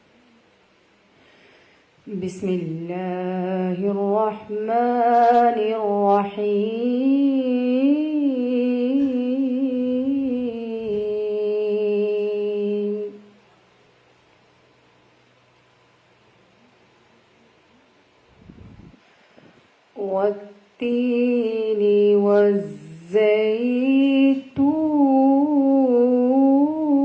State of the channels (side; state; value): both; identical; correlation 1.00